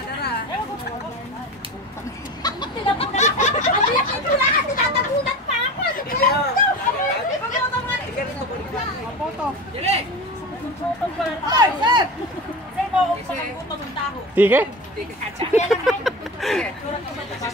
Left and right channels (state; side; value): normal; both; correlation 0.29